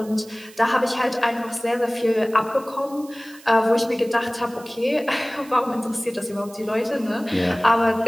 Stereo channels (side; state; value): right; noise; hiss, 22 dB below the sound